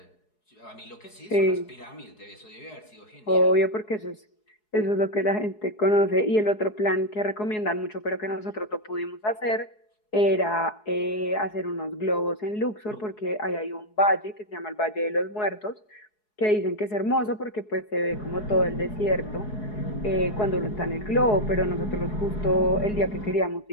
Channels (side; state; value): right; late; 4.7 ms